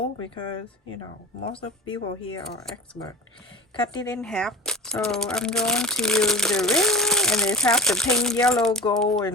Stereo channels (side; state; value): both; normal; correlation 0.34